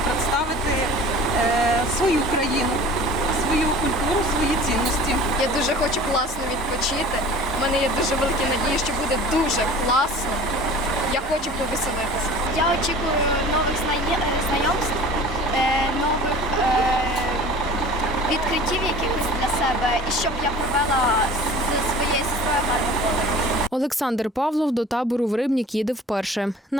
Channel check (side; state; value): both; normal; correlation 0.43